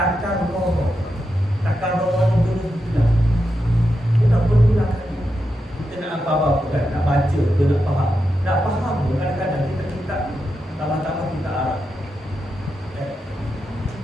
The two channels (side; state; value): both; normal; correlation 0.87